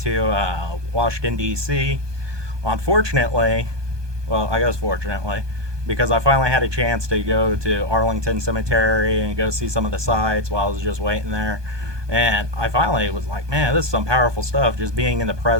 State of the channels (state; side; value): late; left; 1.2 ms